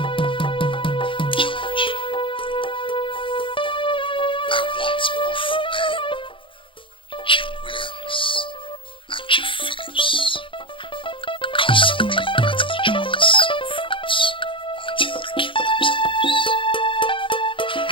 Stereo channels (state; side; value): late; right; 0.25 ms